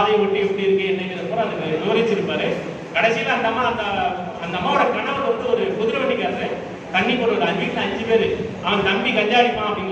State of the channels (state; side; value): identical; both; correlation 1.00